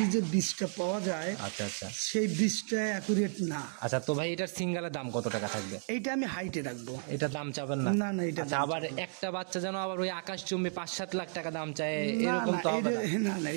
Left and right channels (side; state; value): left; silent; 56 dB below the other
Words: যে বীজটা পাওয়া যায় আচ্ছা আচ্ছা সেই বীজটা অ্যাকুরেট না। আচ্ছা, তো ভাই এটার সিঙ্গেলের দাম কত টাকা থাকবে? এইটা আমি হাইটে রাখবো। এটা দাম চাবেন না? না না, এটা আচ্ছা, আবার একটা বাচ্চা যেন আবার ওই আকাশচুম্বী 5-7 লাখ টাকা দাম চায়, না এরকম না, তো হবে না? না না,